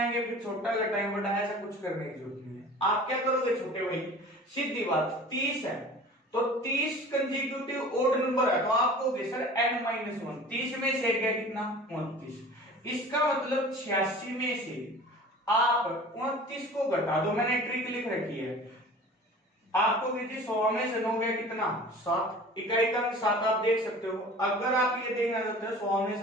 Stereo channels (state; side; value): normal; both; correlation 0.42